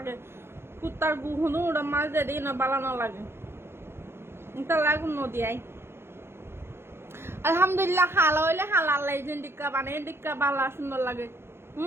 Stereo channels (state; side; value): late; left; 0.12 ms